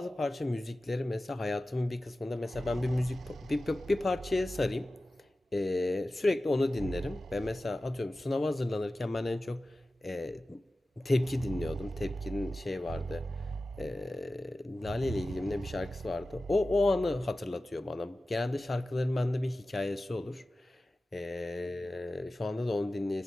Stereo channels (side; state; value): both; normal; correlation 0.95